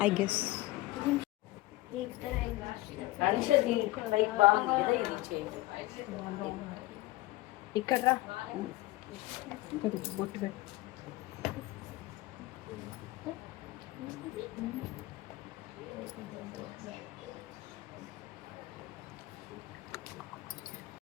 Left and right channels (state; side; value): quieter; right; 18.9 dB